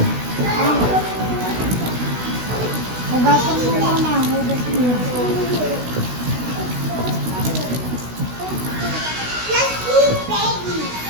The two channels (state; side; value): late; left; 16 ms